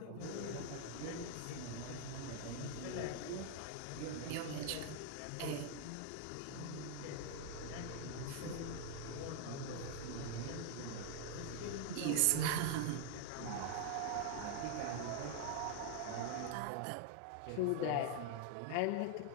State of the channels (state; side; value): different; both; correlation 0.00